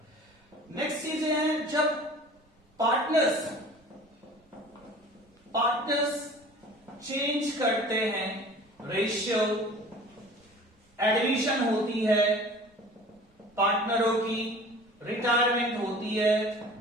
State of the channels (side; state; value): both; normal; correlation 0.44